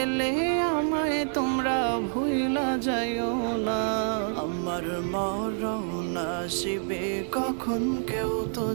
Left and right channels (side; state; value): left; silent; digital silence